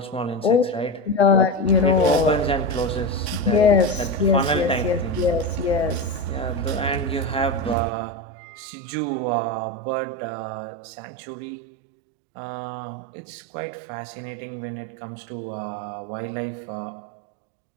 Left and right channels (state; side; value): drops out; left; at 7.8 s